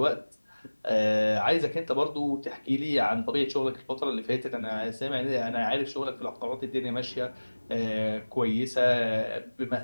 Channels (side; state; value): both; inverted; correlation -1.00